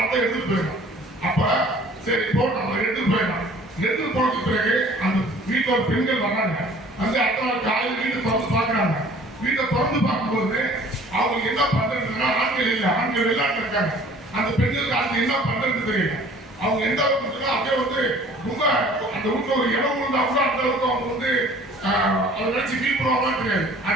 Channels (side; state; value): both; normal; correlation 0.51